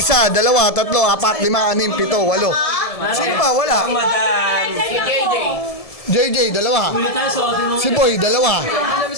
1, 2, 3, 4, 5, 6, 7, 8. Sino pa? Wala. Madam! JJ, 2. Ulit tayo suotin mo. Si Boy,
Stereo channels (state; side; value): late; right; 1.7 ms